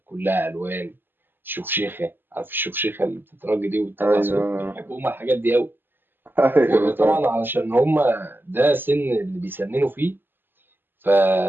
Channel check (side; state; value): left; late; 0.096 ms